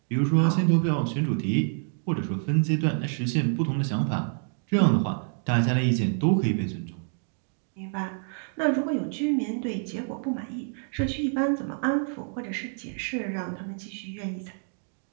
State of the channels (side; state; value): left; silent; 57 dB below the other